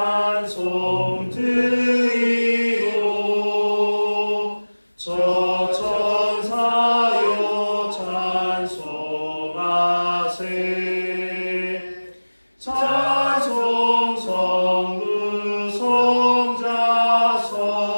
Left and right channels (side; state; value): both; inverted; correlation -1.00